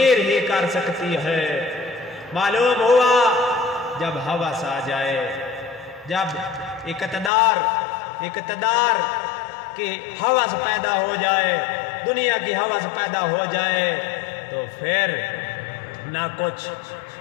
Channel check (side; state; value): right; drops out; at 7.3 s